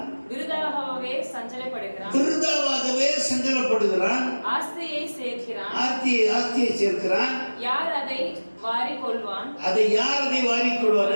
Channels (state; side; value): inverted; both; correlation -1.00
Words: விருதாவாகவே சஞ்சலப்படுகிறான். ஆஸ்தியை சேர்க்கிறான். ஆஸ்தியை சேர்க்கிறான். யார் அதை வாரிக்கொள்வான்? அதை யார் அதை வாரிக்கொள்வான்